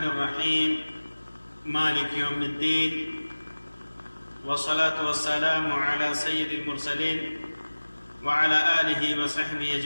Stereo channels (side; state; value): both; inverted; correlation -1.00